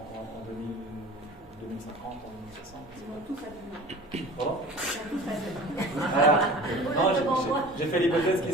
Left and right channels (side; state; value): both; normal; correlation 0.40